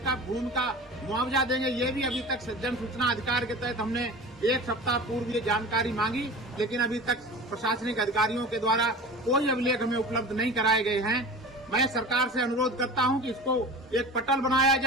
भूमि का मुआवजा देंगे, ये भी अभी तक जन सूचना अधिकार के तहत हमने 1 सप्ताह पूर्व ये जानकारी मांगी, लेकिन अभी तक प्रशासनिक अधिकारियों के द्वारा कोई अभिलेख हमें उपलब्ध नहीं कराए गए हैं। मैं सरकार से अनुरोध करता हूं कि इसको एक पटल बनाया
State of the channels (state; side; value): normal; both; correlation 0.35